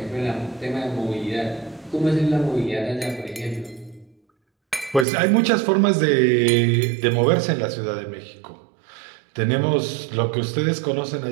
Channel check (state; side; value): drops out; left; at 5.1 s